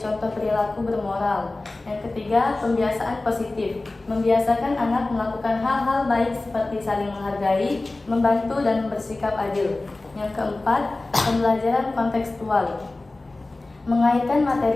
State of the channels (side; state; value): right; quieter; 3.1 dB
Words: perilaku bermoral. Yang ketiga, pembiasaan positif. Membiasakan anak melakukan hal-hal baik seperti saling menghargai, membantu, dan bersikap adil. Yang keempat, pembelajaran kontekstual. Mengaitkan